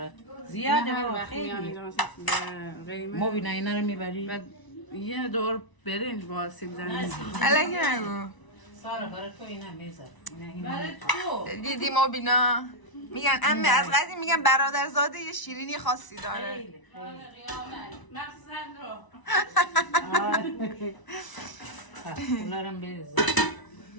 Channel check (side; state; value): right; late; 1.0 ms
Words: زیاده هر بابا وقت میام خیلی اینجا مثلا قیمه مبینا اینا رو میبری و یه دور برنج با سیب زمینی. الکی نگو. سارا برای تو اینا میذار برای تو دیدی مبینا میگن امه از قدیم میگن برادرزاده یه شیرینی خاصی داره. خیلی مخصوصا رو اونارم بریزم